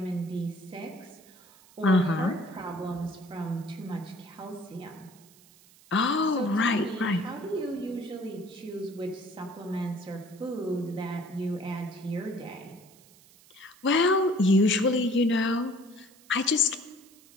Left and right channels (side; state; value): right; noise; hiss, 26 dB below the sound